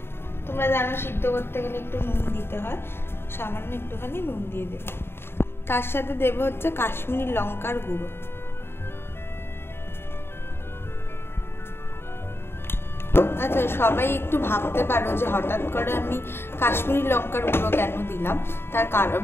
তোমরা জানো সিদ্ধ করতে গেলে একটু নুন দিতে হয়, সামান্য একটুখানি নুন দিয়ে দেবো। তার সাথে দেবো হচ্ছে কাশ্মীরি লঙ্কার গুঁড়ো। আচ্ছা, সবাই একটু ভাবতে পারো যে হঠাৎ করে আমি কাশ্মীরি লঙ্কার গুঁড়ো কেন দিলাম। তার কারণ,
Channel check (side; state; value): right; late; 0.11 ms